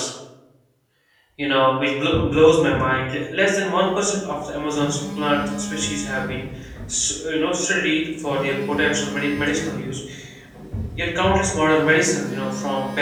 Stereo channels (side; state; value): both; identical; correlation 1.00